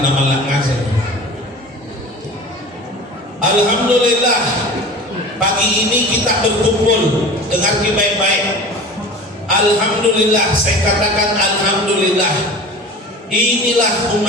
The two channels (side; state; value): both; normal; correlation 0.37